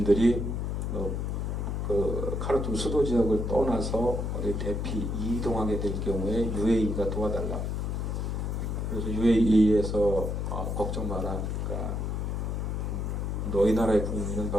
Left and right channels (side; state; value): left; noise; hum, 1 dB below the sound